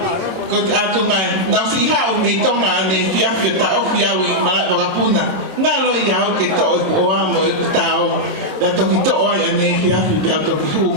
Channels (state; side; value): late; left; 26 ms